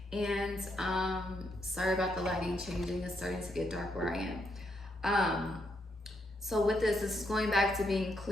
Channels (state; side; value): normal; both; correlation 0.78